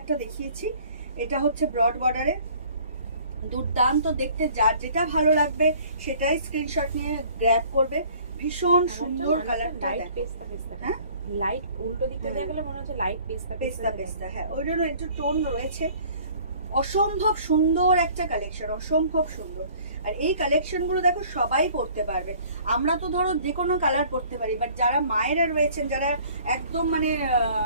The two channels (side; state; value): both; inverted; correlation -0.53